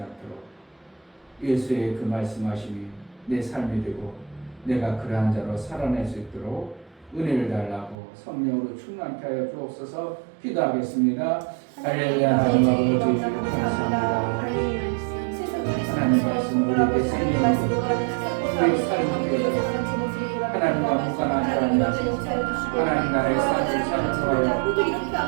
않도록 예수의 그 말씀하심이 내 삶이 되고 내가 그러한 자로 살아낼 수 있도록 은혜를 달라고 성령으로 충만케 하여 주옵소서. 기도하겠습니다. 할렐루야. 하나님 아버지 감사합니다. 하나님 말씀 우리에게 생명이고 우리의 삶이 되어 하나님과 무관한 사람이 하나님 나라의 삶을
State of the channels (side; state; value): left; drops out; at 8.0 s